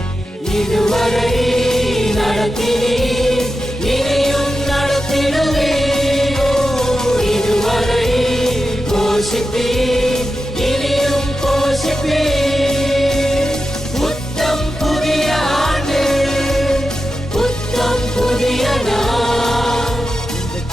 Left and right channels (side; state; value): both; normal; correlation 0.91